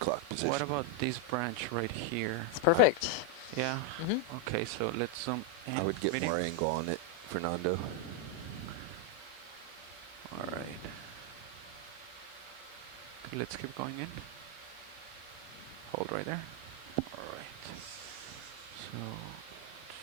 position. what about this branch right here? It's perfect. Yeah. Mhm. Okay, so let's zoom in. I would get video. more angle on it, Fernando. All right. Okay, let's keep going in. Hold right there. All right. So.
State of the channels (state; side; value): late; right; 8.8 ms